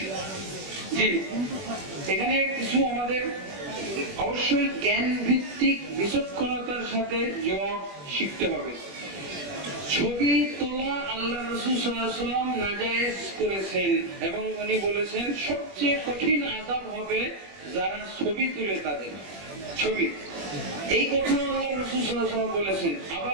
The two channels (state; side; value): late; left; 21 ms